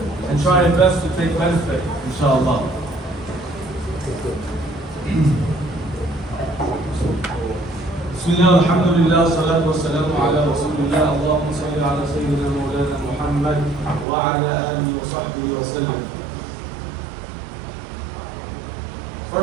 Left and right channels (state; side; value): drops out; left; at 14.1 s